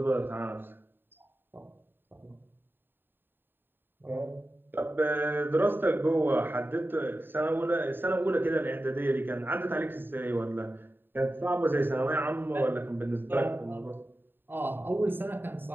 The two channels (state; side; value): late; left; 0.096 ms